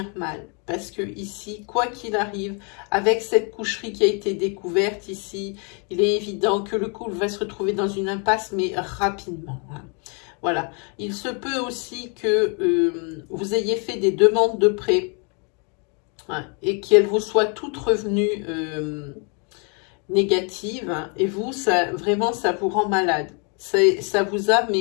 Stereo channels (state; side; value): quieter; right; 36.1 dB